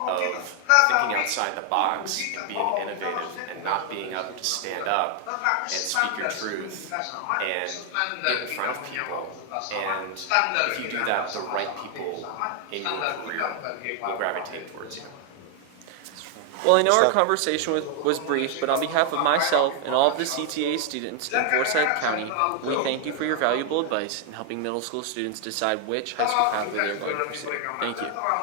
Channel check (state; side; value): different; both; correlation 0.00